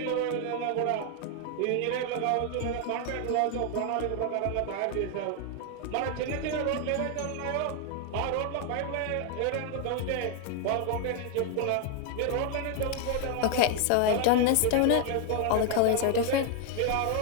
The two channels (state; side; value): different; both; correlation 0.01